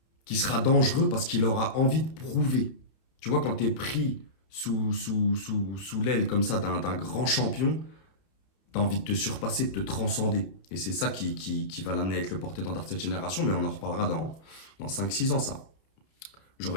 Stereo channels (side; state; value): right; late; 31 ms